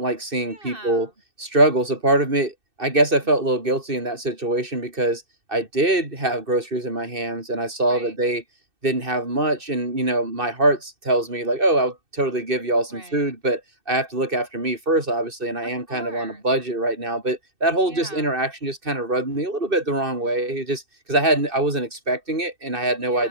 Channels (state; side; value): late; left; 2.6 ms